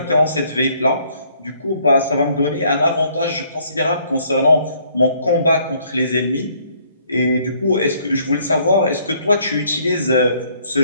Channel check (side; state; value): both; inverted; correlation -0.65